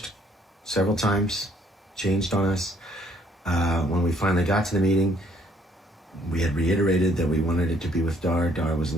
several times, changed on us. When we finally got to the meeting, we had reiterated that we wanted it to be with Dhar. Dhar was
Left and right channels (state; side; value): normal; both; correlation 0.64